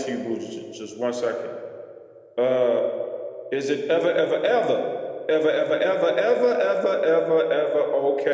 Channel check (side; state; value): both; identical; correlation 1.00